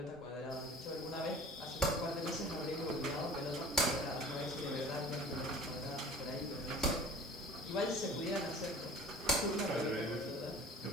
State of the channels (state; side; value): normal; both; correlation 0.43